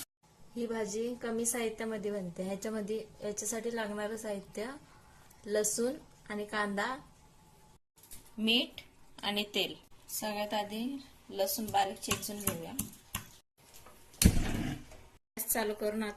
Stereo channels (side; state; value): both; identical; correlation 1.00